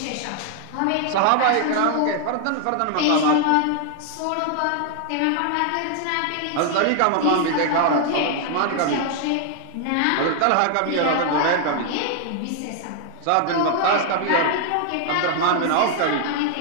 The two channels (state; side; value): different; both; correlation 0.00